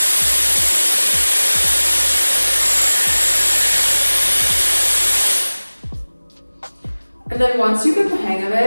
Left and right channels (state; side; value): inverted; both; correlation -1.00